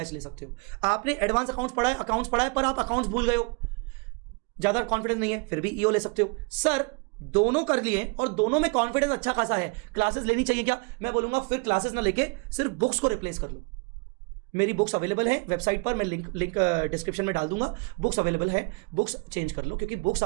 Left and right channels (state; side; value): quieter; left; 31.8 dB